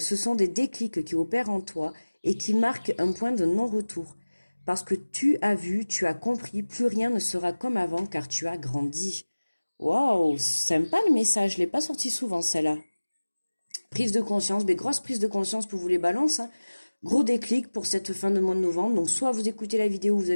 sont des déclics qui opèrent en toi et qui marquent un point de non-retour. Parce que tu as vu, tu as compris, plus rien ne sera comme avant car tu as grandi. Waouh, sympa le message, je l'ai pas sorti souvent celle-là. Prise de conscience, mais grosse prise de conscience pour vous les balances. Hein. Gros déclic pour cette fin de mois de novembre. Donc, soit vous écoutez la vidéo, vous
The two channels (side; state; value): both; inverted; correlation -1.00